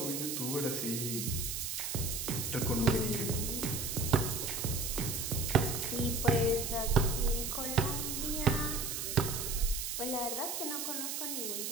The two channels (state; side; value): noise; right; hiss, 3 dB below the sound